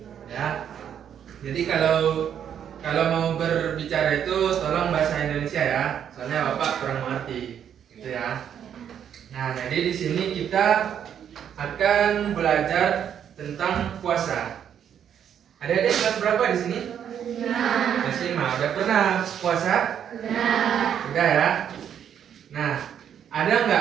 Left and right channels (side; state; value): left; quieter; 8.9 dB